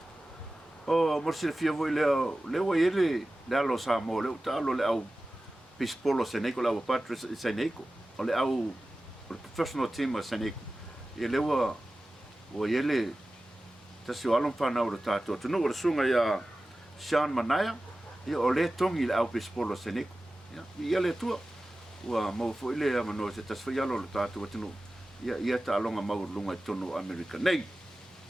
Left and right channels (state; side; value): normal; both; correlation 0.96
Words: o morsi fia voi leo ele le alo Samoa le talo le au pispolo seneko la patro seneko o le au professional team seneko ia lewa o ele tasio alon fana o tato tunu o sunga ia Sean Manaya ia o le tongi le au pispolo seneko ia le tua ua mau fo ile mano se tasfia lo tatu tunu ia ta longa mau lunga tonu Amerika nei